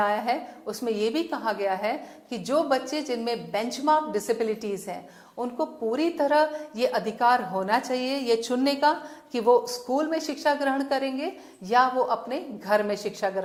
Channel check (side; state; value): both; identical; correlation 1.00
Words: है, उसमें यह भी कहा गया है कि जो बच्चे जिनमें बेंचमार्क डिसेबिलिटीज हैं उनको पूरी तरह ये अधिकार होना चाहिए ये चुनने का कि वो स्कूल में शिक्षा ग्रहण करेंगे या वो अपने घर में शिक्षा